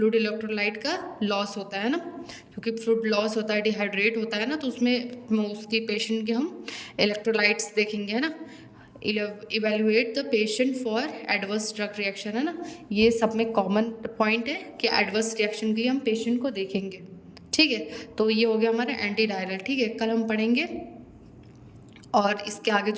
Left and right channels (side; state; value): both; identical; correlation 1.00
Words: इलेक्ट्रोलाइट का लॉस होता है ना, क्योंकि फ्लूइड लॉस होता है, डिहाइड्रेट होता है ना, तो उसमें उसके पेशेंट के हम इलेक्ट्रोलाइट्स देखेंगे, है ना। Evaluate the patient for adverse drug reaction, है ना। ये सब में कॉमन पॉइंट है कि एडवर्स रिएक्शन के लिए हम पेशेंट को देखेंगे। ठीक है, तो ये हो गया हमारा एंटी डायरियल। ठीक है, कल हम पढ़ेंगे और इसके आगे